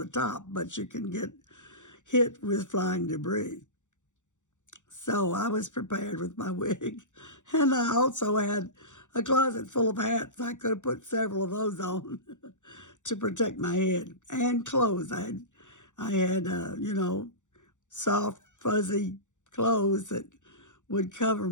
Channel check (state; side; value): late; right; 0.85 ms